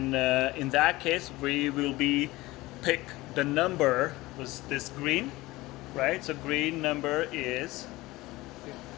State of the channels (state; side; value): quieter; right; 19.6 dB